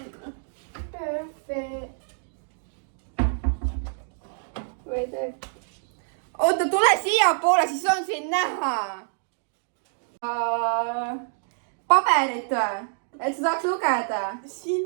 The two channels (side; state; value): left; silent; digital silence